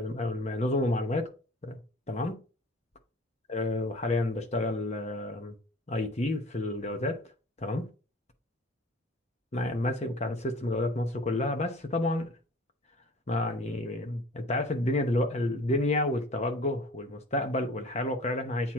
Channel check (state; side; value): normal; both; correlation 0.45